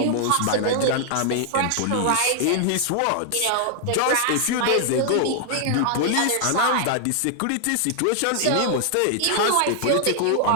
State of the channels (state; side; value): different; both; correlation 0.00